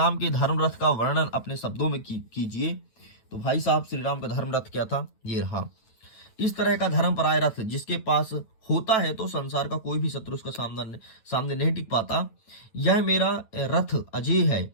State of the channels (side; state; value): right; late; 9.1 ms